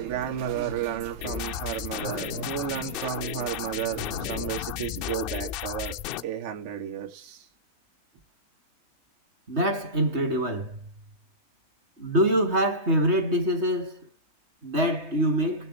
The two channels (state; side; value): late; left; 3.2 ms